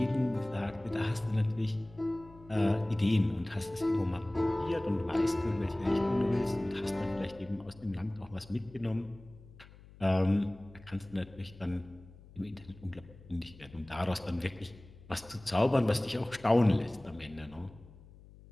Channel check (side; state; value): left; noise; hum, 21 dB below the sound